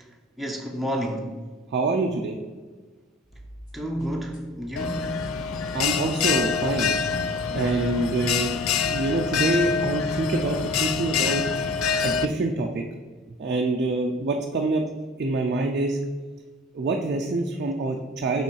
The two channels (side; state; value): both; normal; correlation 0.42